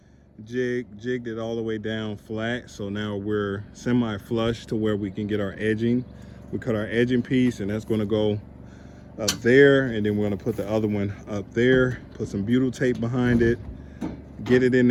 jigged it all the way down flat. So now we're semi-flush to where we can get our edging. We cut our edging piece, and that's gonna go up there. And then we're gonna put the other one up there, put some butyl tape behind it, get it in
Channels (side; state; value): both; identical; correlation 1.00